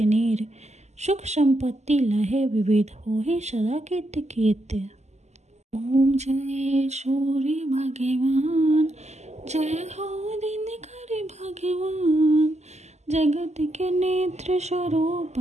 सुख संपत्ति लहे विविध, होहि सदा कीर्ति कीर्ति। ओम जय सूर्य भगवान, जय हो दिनकर भगवान, जगत के नेत्र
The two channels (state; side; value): late; left; 0.33 ms